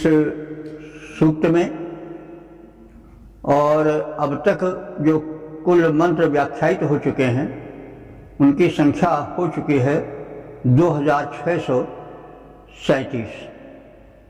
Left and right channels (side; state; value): both; identical; correlation 1.00